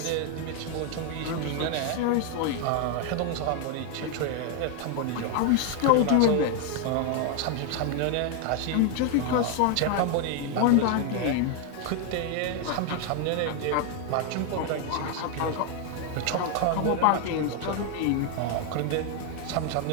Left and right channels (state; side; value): different; both; correlation 0.01